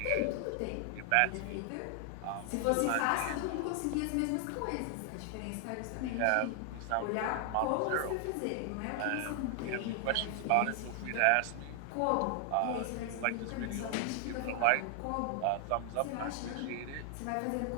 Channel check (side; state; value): both; different; correlation 0.00